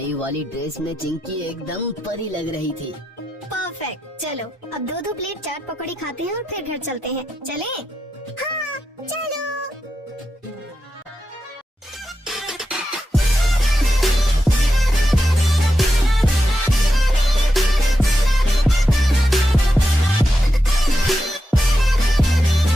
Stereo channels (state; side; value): normal; both; correlation 0.88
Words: वाली ड्रेस में चिंकी एकदम परी लग रही थी। परफेक्ट। चलो अब 2-2 प्लेट चाट पकौड़ी खाते हैं और फिर घर चलते हैं। चलें? हाँ चलो।